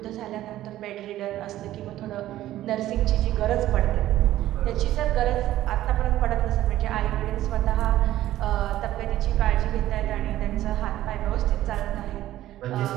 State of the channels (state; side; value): quieter; left; 14.1 dB